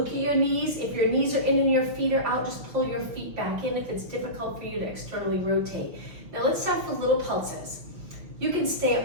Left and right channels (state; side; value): late; left; 5.9 ms